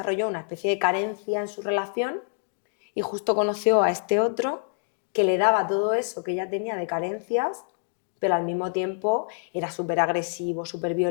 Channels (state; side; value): silent; right; digital silence